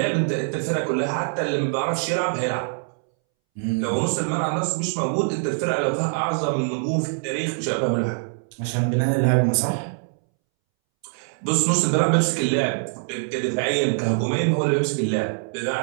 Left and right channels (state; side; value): silent; left; 63 dB below the other